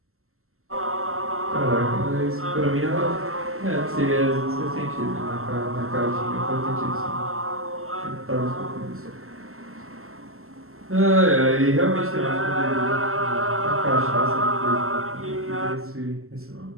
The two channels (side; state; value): left; late; 0.62 ms